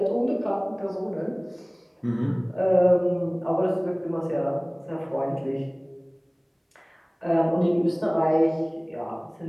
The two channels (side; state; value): both; identical; correlation 1.00